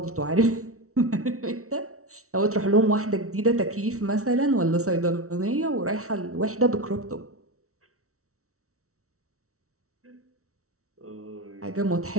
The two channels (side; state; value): left; late; 0.64 ms